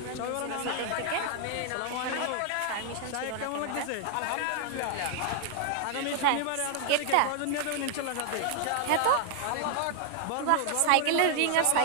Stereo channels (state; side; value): different; both; correlation 0.00